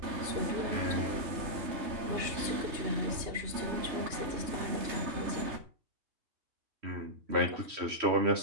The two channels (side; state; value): left; late; 3.3 ms